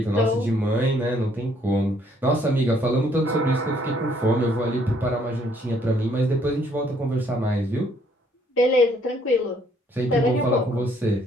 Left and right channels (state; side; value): normal; both; correlation 0.66